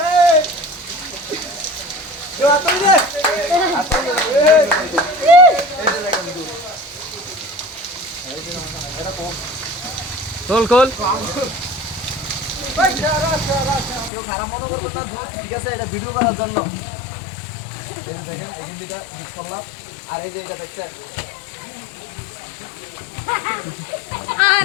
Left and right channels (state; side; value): drops out; right; at 14.1 s